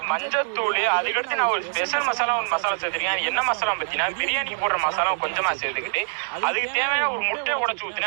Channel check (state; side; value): silent; left; digital silence